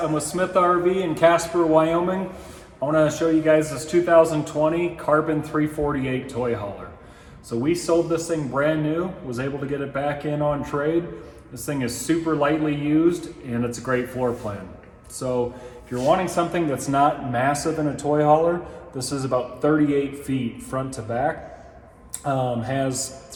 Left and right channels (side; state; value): both; identical; correlation 1.00